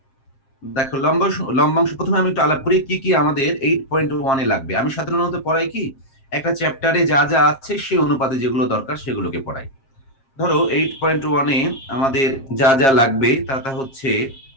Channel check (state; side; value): late; right; 7.4 ms